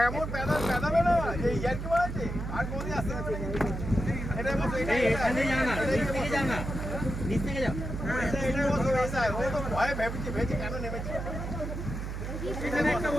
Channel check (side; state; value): right; noise; hum, 5 dB below the sound